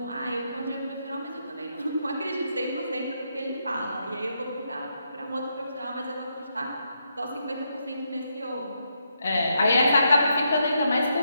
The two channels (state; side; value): inverted; both; correlation -0.80